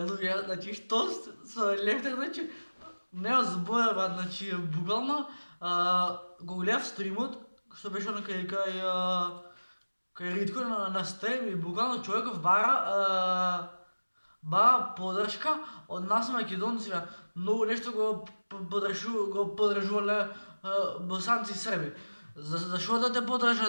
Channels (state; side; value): inverted; both; correlation -1.00